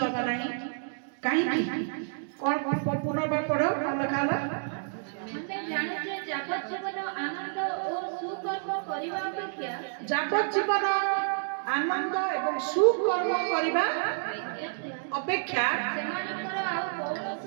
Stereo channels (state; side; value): silent; left; digital silence